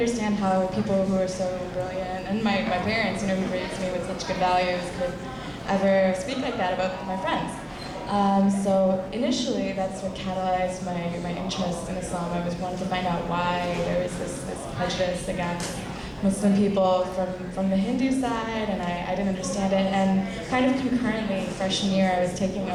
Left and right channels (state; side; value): identical; both; correlation 1.00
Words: how people who are so brilliant, and my parents, who raised me with such good values, could ever speak like that about my friends. So initially, that's what catalyzed my interest in Islam. I was wanting to find out why there was this prejudice against Muslim people from the Hindu side, and I didn't understand it. And kind of concurrently, freshman year, I was taking